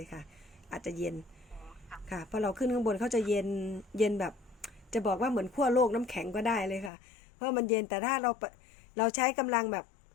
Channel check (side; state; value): right; drops out; at 6.9 s